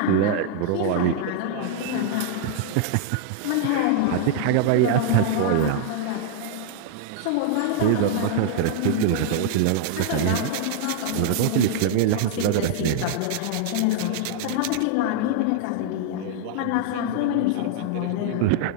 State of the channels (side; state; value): both; different; correlation -0.01